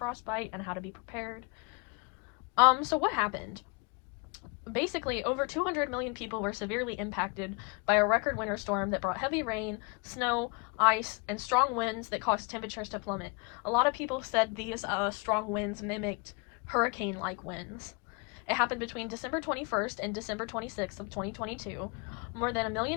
and how to be prepared. So what happened? Basically, over 200 million people were severely impacted by a record winter storm that brought heavy rain, snow, ice, and strong winds that caused temperatures to plummet. A lot of people said these strong winds mimicked hurricane-like winds. It happened between December 21st and December 26th of 2022. More than 1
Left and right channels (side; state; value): right; quieter; 32.2 dB